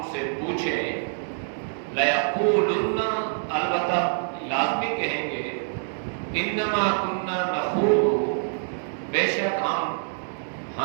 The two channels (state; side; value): silent; left; digital silence